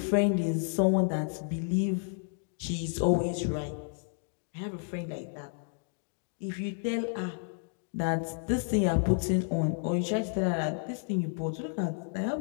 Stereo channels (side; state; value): right; silent; digital silence